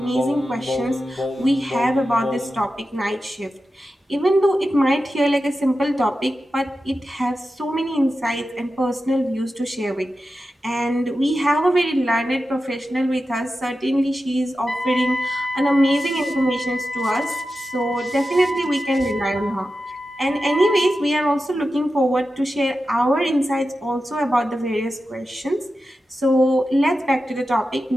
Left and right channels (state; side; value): normal; both; correlation 0.92